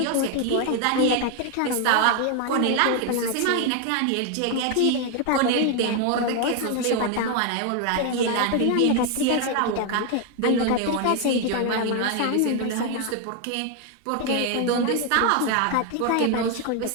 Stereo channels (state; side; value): different; both; correlation 0.01